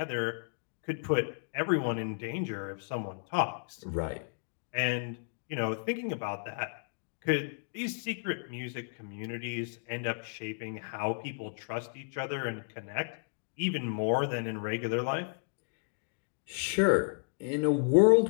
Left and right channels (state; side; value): silent; right; digital silence